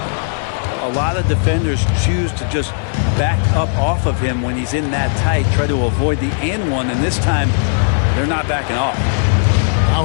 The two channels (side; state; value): right; silent; digital silence